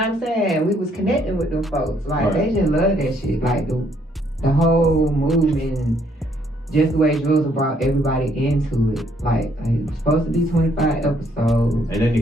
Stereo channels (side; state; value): both; normal; correlation 0.68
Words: saying? We was connecting with them folks. Like they just love that shit. Like the whole movement. Just the way Drizzle brought everybody into it. Like it's supposed to be 25 episodes. And then